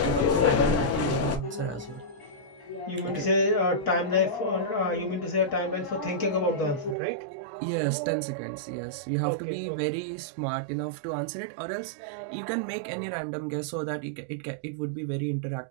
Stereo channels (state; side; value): drops out; left; at 7.0 s